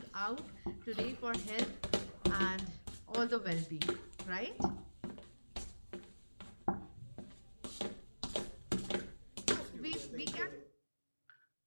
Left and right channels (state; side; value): inverted; both; correlation -1.00